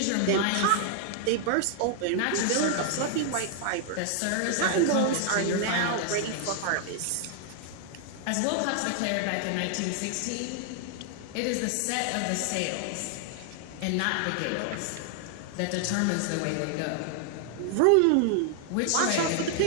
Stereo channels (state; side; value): different; both; correlation 0.00